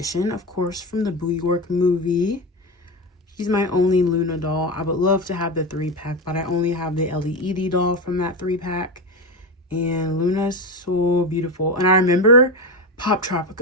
of course, from the Boo York movie. She's my only Luna doll. I would love to have the 3-pack, but I only have the LED doll from that 3-pack. And Luna's so beautiful. And I remember Pop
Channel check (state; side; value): normal; both; correlation 0.18